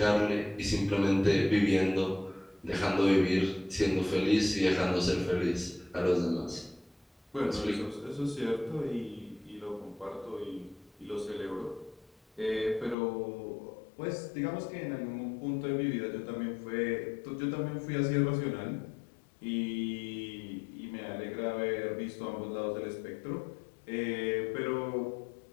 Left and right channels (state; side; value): drops out; right; at 13.0 s